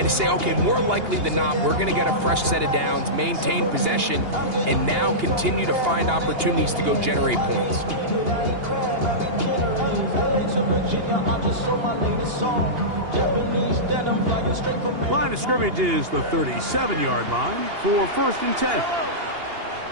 to say, okay, more likely than not, we're going to get a fresh set of downs, maintain possession, and now continue to find opportunities to go generate points. Line of scrimmage is the 37-yard line for 1st and 10.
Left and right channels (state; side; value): late; left; 2.8 ms